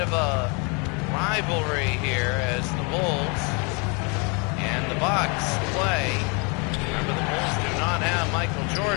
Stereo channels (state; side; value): quieter; right; 32.3 dB